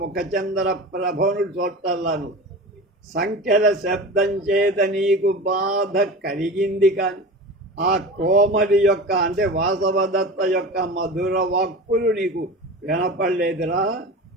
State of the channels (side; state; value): both; normal; correlation 0.31